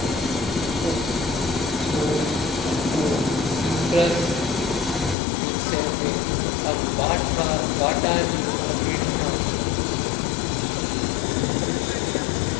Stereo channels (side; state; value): right; drops out; at 5.2 s